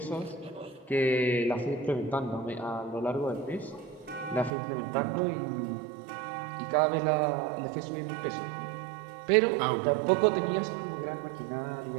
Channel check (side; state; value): left; drops out; at 4.5 s